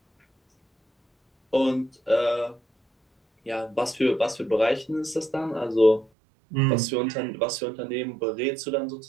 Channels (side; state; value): left; drops out; at 6.1 s